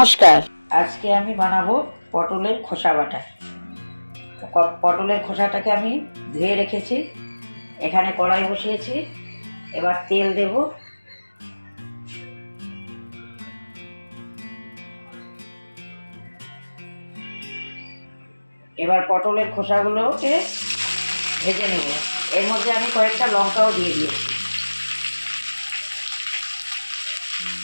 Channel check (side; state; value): both; inverted; correlation -1.00